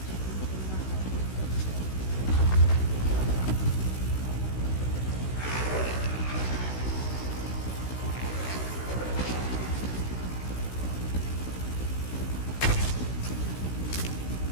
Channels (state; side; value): late; right; 16 ms